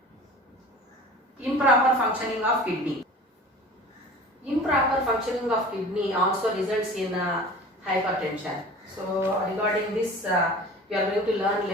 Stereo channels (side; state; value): both; normal; correlation 0.40